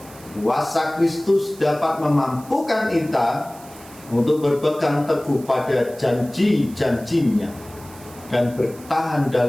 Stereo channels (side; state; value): right; noise; hiss, 21 dB below the sound